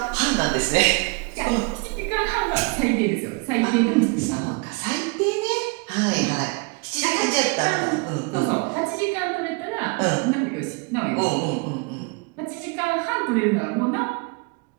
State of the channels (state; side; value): quieter; left; 30.0 dB